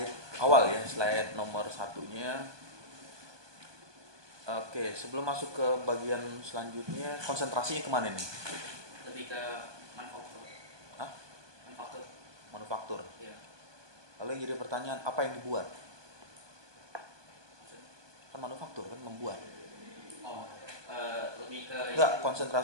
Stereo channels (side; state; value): left; late; 1.2 ms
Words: awal ya, slide nomor satunya. Oke, sebelum masuk ke bagian selanjutnya, konsentrasinya kemana nih? Lebih ke manufaktur. Hah? Manufaktur. Manufaktur. Iya. Lalu yang jadi pertanyaan, apa yang dibuat? Maksudnya? Kan manufaktur kan membuat. Oh, lebih ke Enggak,